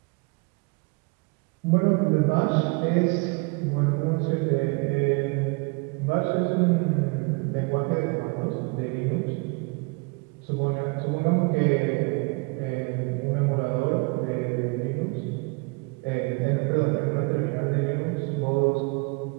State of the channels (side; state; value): left; quieter; 30.7 dB